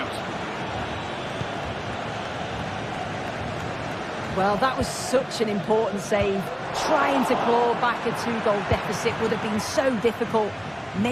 Well, that was such an important save. Trying to claw back a 2-goal deficit would have been so difficult.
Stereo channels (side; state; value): both; identical; correlation 1.00